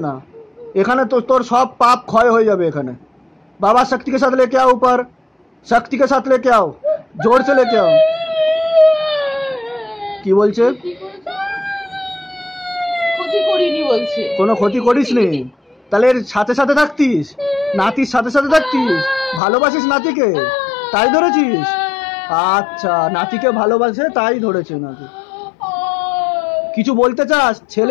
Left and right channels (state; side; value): drops out; right; at 19.4 s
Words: না এখানে। তো তোর সব পাপ ক্ষয় হয়ে যাবে এখানে। बाबा शक्ति के साथ लेके आओ ऊपर, शक्ति के साथ लेके आओ, जोर से लेके आओ। কি বলছে? ক্ষতি করিনি বলছে। কোনো ক্ষতি করিসনি? তাহলে এর সাথে সাথে থাকতিস, নাতির সাথে সাথে থাকতিস, ভালোবাসিস নাতিকে, তাই ধরেছিস? আচ্ছা, নাতিকে ভালোবাসে তাই ধরেছে নাকি? কিছু বলতে চাস?